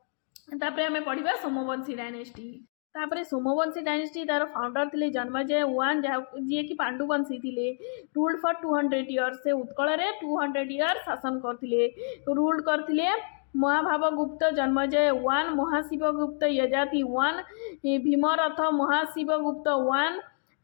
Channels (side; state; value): right; silent; 59 dB below the other